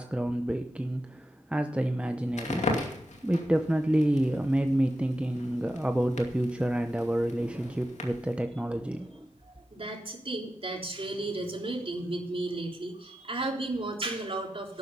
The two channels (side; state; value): both; normal; correlation 0.89